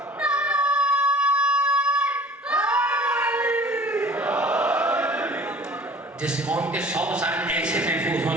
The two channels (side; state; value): both; normal; correlation 0.47